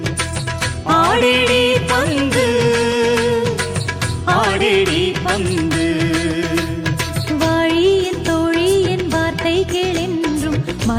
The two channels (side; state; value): both; identical; correlation 1.00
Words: ஆடேடி பந்து ஆடேடி பந்து. வாழியின் தோழியின் வார்த்தை கேளென்றும்